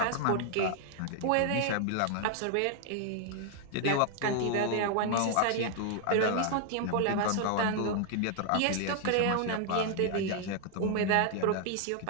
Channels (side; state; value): both; different; correlation 0.00